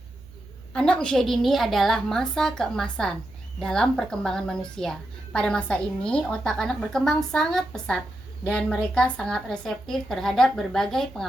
Anak usia dini adalah masa keemasan dalam perkembangan manusia. Pada masa ini, otak anak berkembang sangat pesat dan mereka sangat reseptif terhadap berbagai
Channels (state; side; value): noise; right; hum, 21 dB below the sound